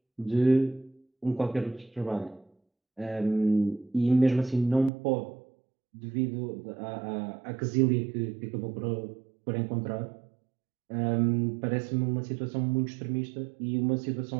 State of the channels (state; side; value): drops out; left; at 4.9 s